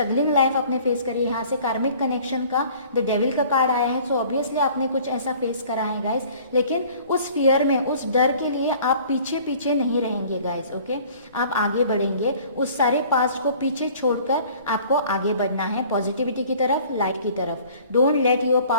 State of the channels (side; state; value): both; inverted; correlation -0.51